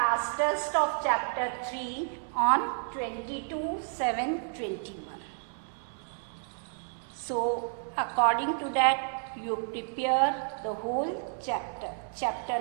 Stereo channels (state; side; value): silent; left; digital silence